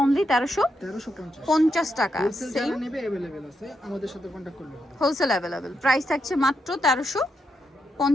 অনলি 1350 টাকা। সেম নেবে अवेलेबल আছে, আমাদের সাথে কন্টাক্ট করলে হবে। Wholesale available. প্রাইস থাকছে মাত্র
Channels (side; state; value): both; normal; correlation 0.82